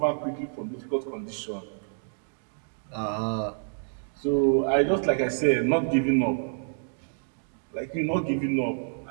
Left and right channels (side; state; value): left; silent; digital silence